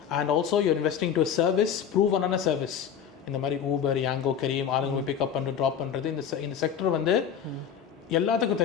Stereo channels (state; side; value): quieter; right; 8.2 dB